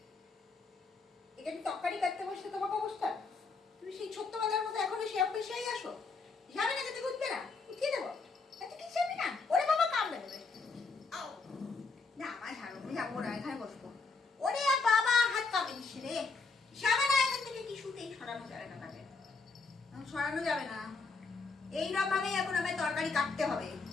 এখানে তরকারি কাটতে বসতে তোমাকে অবস্থা, তুমি সেই ছোট্টবেলার মতো এখনো সে অফিসেই আসো। যাবে না, খেতে উঠবে না, উঠিয়ে দেবো। এত কি যাবে না? ওরে বাবা কামড়ে দেবে। না আমার ঝাড়ু যাবো না, এখানে বসবো। ওরে বাবা হাত কামড়ে দিচ্ছে রে। যাবে না এখান থেকে, কিছুতেই সরানো যাবে না তাকে, সরানো যাবে না। এইরকম ভাবেই এখন আমায় তরকারি কাটতে হবে,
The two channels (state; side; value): quieter; right; 4.2 dB